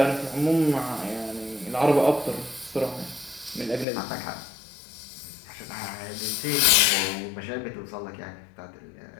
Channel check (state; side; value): drops out; right; at 3.9 s